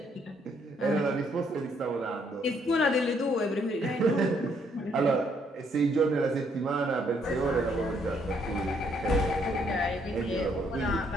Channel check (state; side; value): normal; both; correlation 0.69